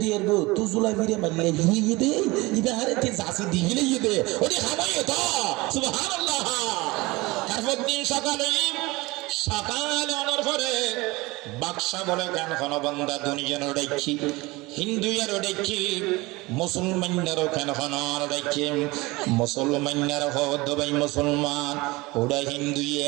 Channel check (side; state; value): left; quieter; 22.4 dB